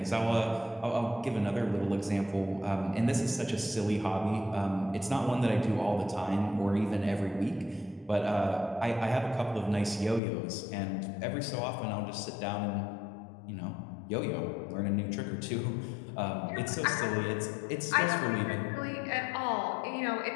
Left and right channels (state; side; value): drops out; right; at 10.2 s